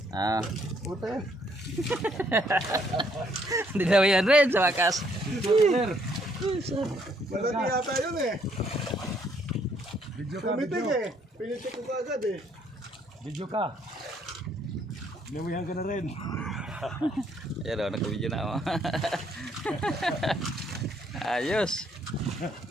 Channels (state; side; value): normal; both; correlation 0.68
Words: Ah. Puta yan. Dinawihan rin sa wakas. Malaki yata yun eh. Pumitik eh. Pinitik ko kaagad eh. Video ka. Nawihan ka na rin. Ayan o, nag-video na ako. Ayos.